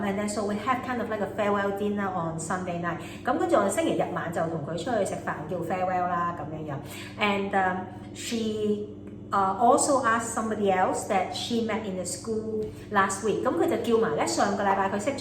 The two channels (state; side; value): identical; both; correlation 1.00